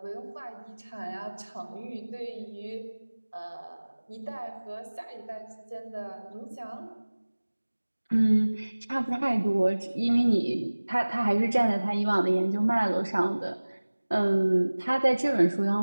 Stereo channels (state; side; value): inverted; both; correlation -1.00